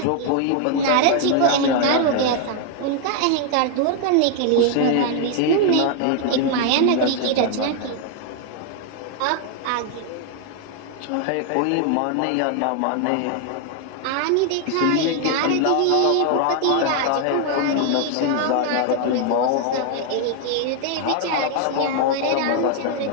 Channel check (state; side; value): different; both; correlation 0.00